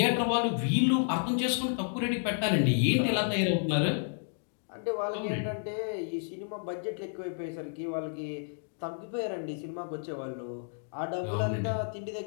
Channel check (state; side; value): silent; right; digital silence